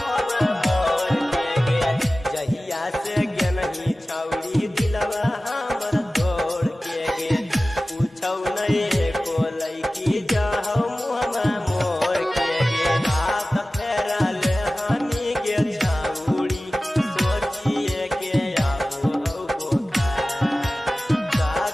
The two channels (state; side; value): normal; both; correlation 0.96